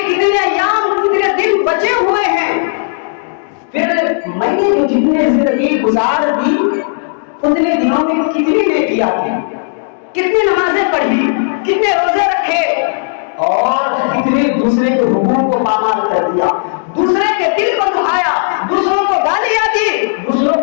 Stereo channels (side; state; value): right; silent; 71 dB below the other